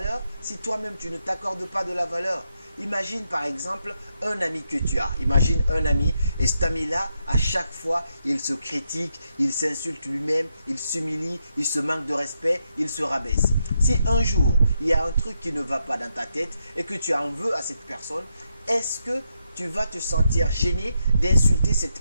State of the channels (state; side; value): inverted; both; correlation -0.82